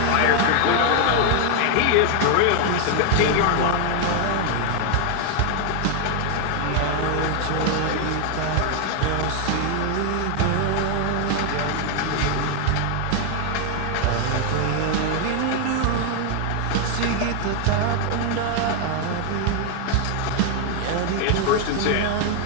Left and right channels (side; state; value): both; different; correlation 0.00